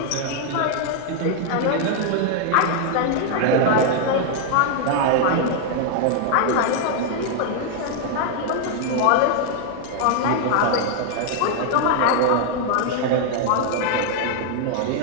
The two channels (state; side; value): different; both; correlation 0.00